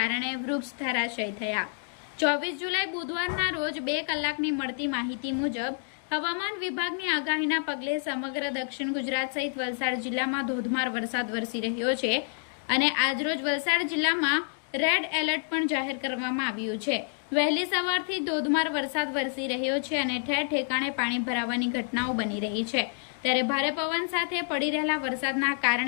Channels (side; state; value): right; silent; 59 dB below the other